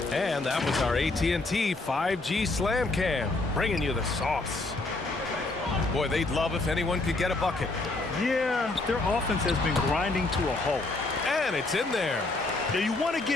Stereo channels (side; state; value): right; quieter; 3.2 dB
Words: And that was our AT&T 5G Slam Cam, bringing you the sauce. Boy, they'd love if anyone could get a bucket. Yeah, their offense has been grinding to a halt. And it's in there. Now, you want to